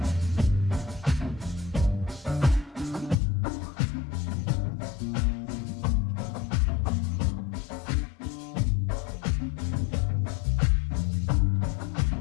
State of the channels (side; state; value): right; drops out; at 3.2 s